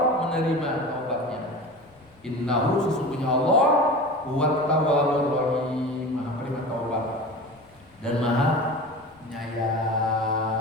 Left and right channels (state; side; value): noise; left; rumble, 29 dB below the sound